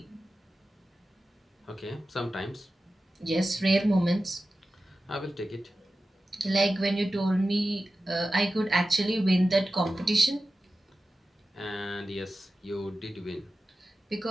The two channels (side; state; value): both; normal; correlation 0.94